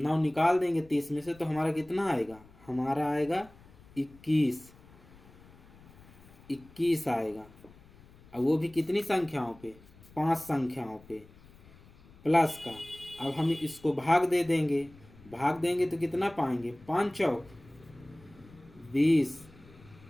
निकाल देंगे 30 में से, तो हमारा कितना आएगा, हमारा आएगा 21 आएगा। अब वो भी कितनी संख्याओं पे, 5 संख्याओं पे प्लस का। अब हम इसको भाग देंगे, तो कितना पाएंगे, 5 चौक 20,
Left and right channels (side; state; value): left; noise; rumble, 24 dB below the sound